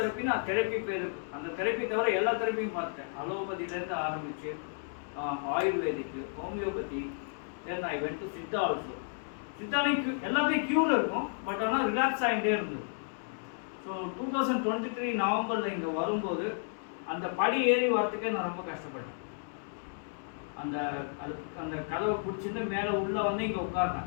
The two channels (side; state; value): right; silent; digital silence